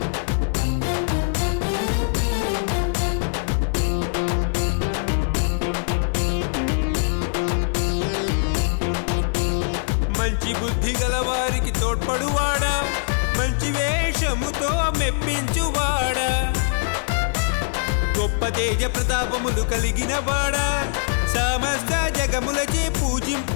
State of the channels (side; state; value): right; silent; digital silence